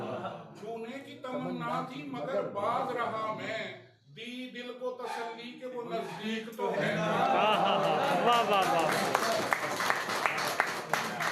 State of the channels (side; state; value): both; identical; correlation 1.00